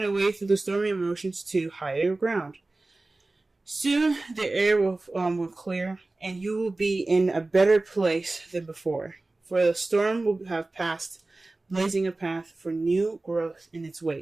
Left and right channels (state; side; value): quieter; left; 3.1 dB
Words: a way through the stormy emotions to higher ground? Soon the air will clear, and you will be in a better place than before. For the storm will have passed, blazing a path for new growth in its